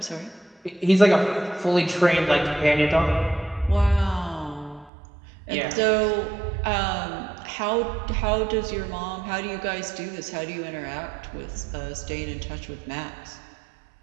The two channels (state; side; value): drops out; left; at 4.9 s